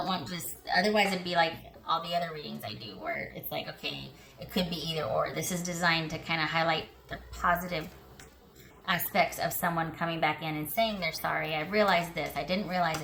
want just, otherwise it'd be like all the other readings I do where it's like, okay, it could be either or. This is designed to kind of highlight the positive aspects of someone coming back in and saying they're sorry. I realized this. I didn't realize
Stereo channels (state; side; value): identical; both; correlation 1.00